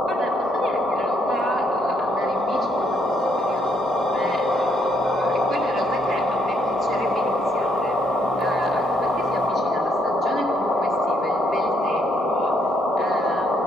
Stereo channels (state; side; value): normal; both; correlation 0.72